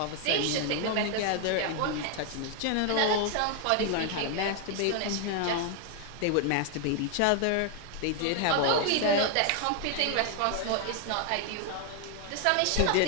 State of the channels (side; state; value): both; different; correlation 0.01